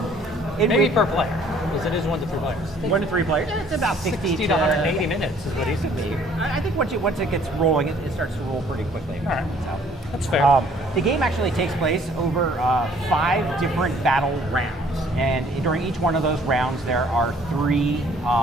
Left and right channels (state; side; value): normal; both; correlation 0.58